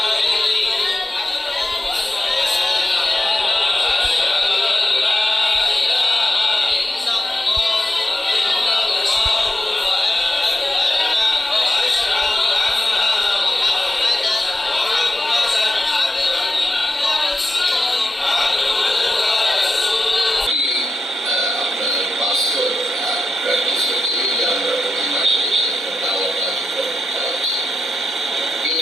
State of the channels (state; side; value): normal; both; correlation 0.90